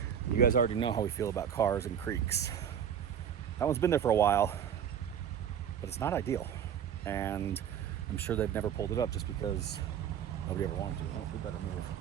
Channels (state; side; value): quieter; left; 8.7 dB